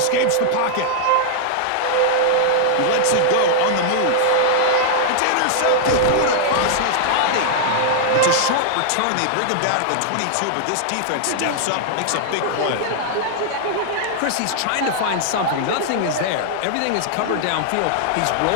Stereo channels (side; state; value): both; different; correlation -0.01